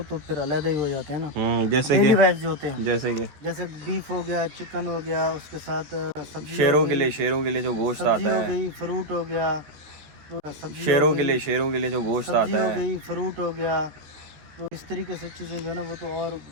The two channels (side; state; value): left; late; 14 ms